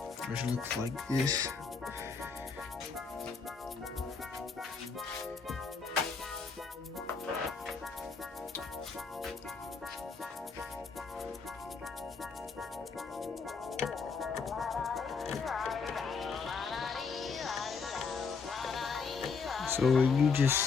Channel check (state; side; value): quieter; right; 5.1 dB